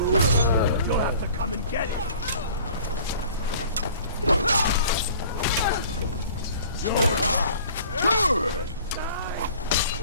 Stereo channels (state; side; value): inverted; both; correlation -0.49